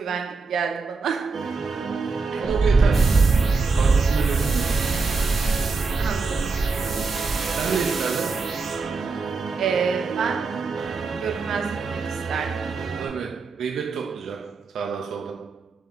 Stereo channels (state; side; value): quieter; left; 4.3 dB